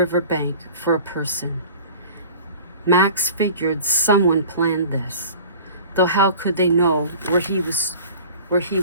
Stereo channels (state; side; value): inverted; both; correlation -0.43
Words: bank for a person. Max figured someone planned this, though how could they know where he was